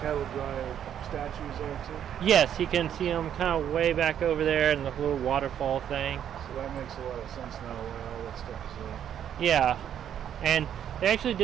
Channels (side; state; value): left; quieter; 9.6 dB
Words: drive statues are too? Yes, you can see them kind of way back over there in the little waterfall thing. So that makes a lot of sense now why all that stuff is there. Yeah, and they actually